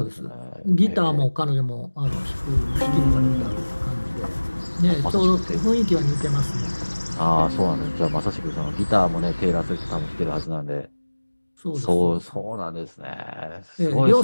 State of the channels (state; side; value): inverted; both; correlation -1.00